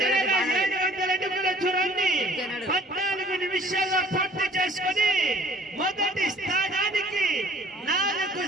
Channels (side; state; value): both; normal; correlation 0.53